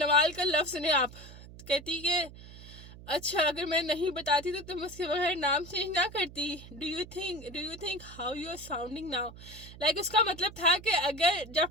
का लफ्ज़ सुने आप, कहती कि अच्छा अगर मैं नहीं बताती तो तुम उसके बगैर नाम चेंज ना करती। Do you think how you are sounding now. Like उसका मतलब था कि अगर जब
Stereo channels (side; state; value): right; noise; hum, 17 dB below the sound